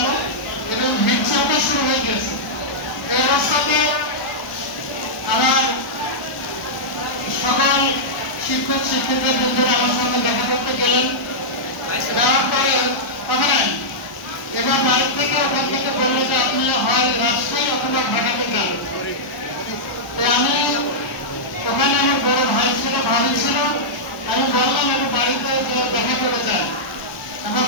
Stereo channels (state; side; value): late; right; 1.0 ms